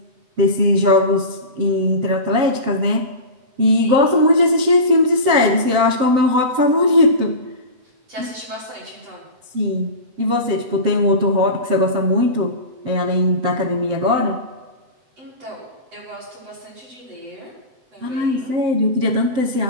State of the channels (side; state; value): left; late; 7.8 ms